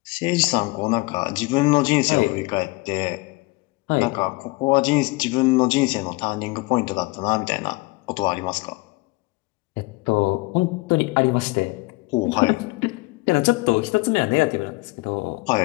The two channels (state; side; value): quieter; right; 23.9 dB